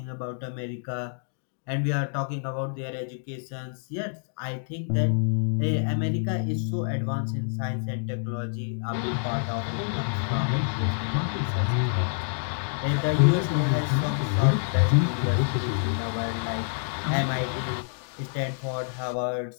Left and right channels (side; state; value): right; silent; digital silence